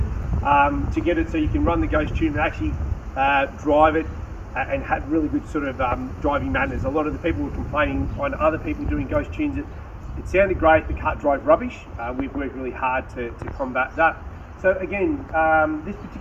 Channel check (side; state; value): both; identical; correlation 1.00